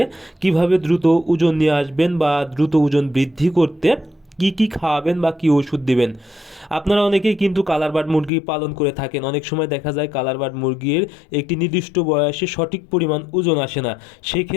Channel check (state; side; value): drops out; right; at 8.3 s